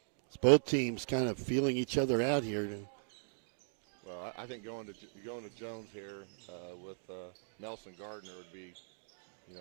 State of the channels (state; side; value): silent; left; digital silence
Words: It's both teams kind of feeling each other out here. Well, I think going to Jones here with Nelson Gardner would be, a